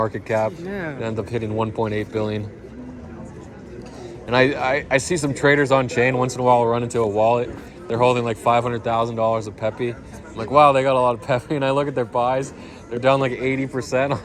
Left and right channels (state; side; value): identical; both; correlation 1.00